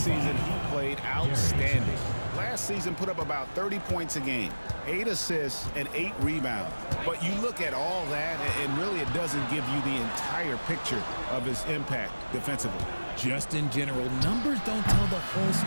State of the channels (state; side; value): inverted; both; correlation -1.00